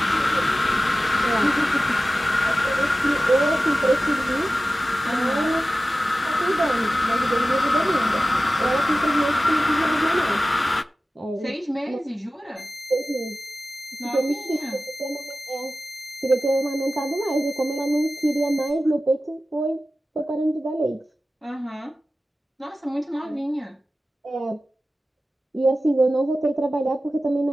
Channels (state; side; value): normal; both; correlation 0.95